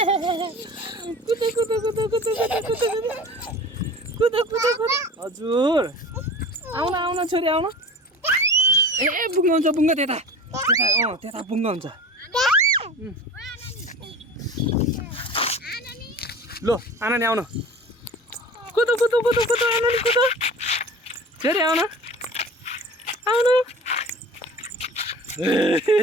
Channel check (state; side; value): normal; both; correlation 0.38